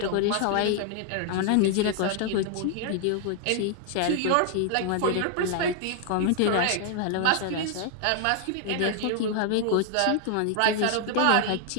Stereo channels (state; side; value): different; both; correlation 0.00